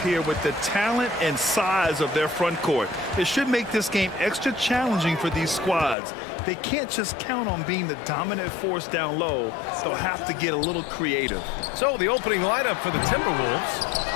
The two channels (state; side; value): drops out; right; at 6.0 s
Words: here with the talent and size of their front court. It should make this game extra challenging for these squads. They can't just count on being the dominant force down low. They'll have to get a little creative. So the opening lineup for the